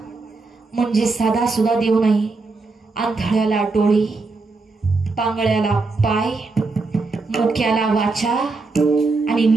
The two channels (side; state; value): left; quieter; 3.8 dB